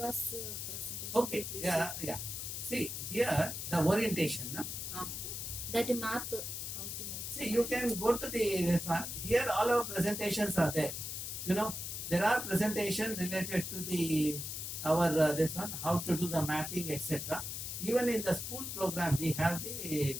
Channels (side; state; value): left; noise; hiss, 5 dB below the sound